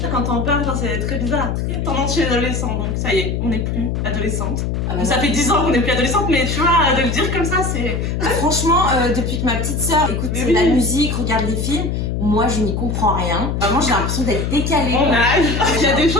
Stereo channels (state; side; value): noise; left; hum, 1 dB below the sound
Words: Quand on parle, c'est très bizarre, très tendance chez les adolescents, donc ça y est, on n'est plus adolescente. Ah bah Ça fait 10 ans qu'on n'est plus adolescente, mais tu vois, de le dire comme ça, c'est... Franchement, depuis que ma petite sœur écoute Mais oui. la musique, regarde les films, moi je n'y comprends rien. Vraiment j'ai l'impression d'être décalée. On a... Il y a des